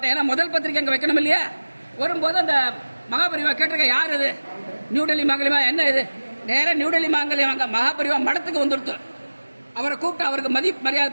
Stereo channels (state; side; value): inverted; both; correlation -1.00